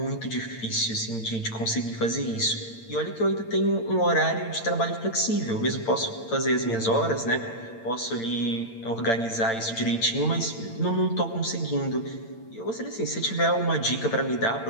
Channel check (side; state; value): right; late; 8.8 ms